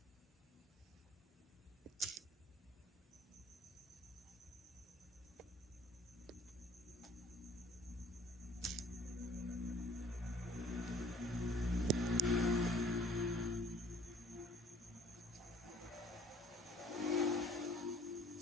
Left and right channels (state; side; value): normal; both; correlation 0.54